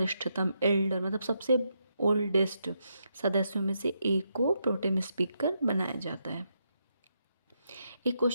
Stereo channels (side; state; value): both; inverted; correlation -0.81